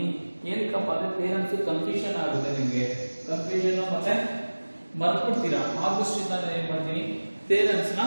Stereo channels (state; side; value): inverted; both; correlation -1.00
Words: ಏನಕ್ಕಪ್ಪ ಅಂದ್ರೆ ಥಿಯರಮ್ಸ್ ಕನ್ಫ್ಯೂಷನ್ ಆಗುತ್ತೆ, ನಿಮಗೆ ಕನ್ಫ್ಯೂಷನ್ ಮತ್ತೆ ಮರ್ತ್ಬಿಡ್ತೀರಾ. ಆದಷ್ಟಿಂದ ನಾನು ಏನ್ ಮಾಡ್ತೀನಿ, ಥಿಯರಮ್ಸ್ ನ